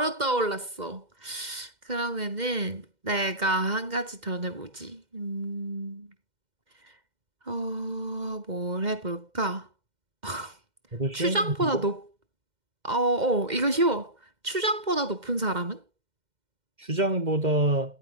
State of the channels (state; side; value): late; left; 2.1 ms